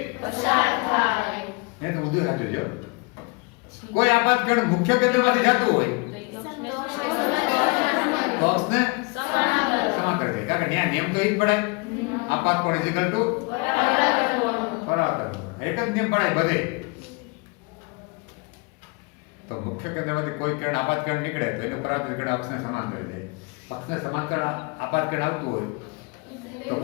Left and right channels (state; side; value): quieter; right; 29.1 dB